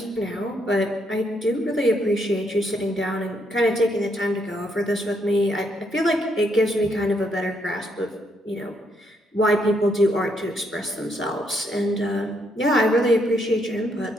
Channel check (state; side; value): normal; both; correlation 0.74